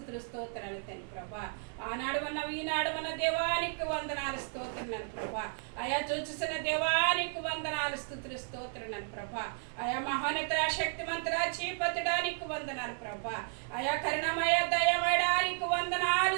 స్తోత్రాలు తండ్రి ప్రభా. ఆనాడు ఉన్నావు ఈనాడు ఉన్న దేవానికి వందనాలు స్తోత్రాలు ప్రభా. అయా చూచుసిన దేవానికి వందనాలు స్తుతులు స్తోత్రాలు ప్రభా. అయా మహోన్నత శక్తిమంతుడా చీపతుడా నీకు వందనాలు ప్రభా. అయా కరుణమయ దయమయడానికి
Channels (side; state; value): left; silent; 55 dB below the other